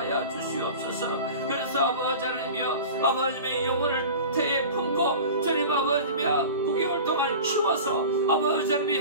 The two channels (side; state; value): both; inverted; correlation -0.36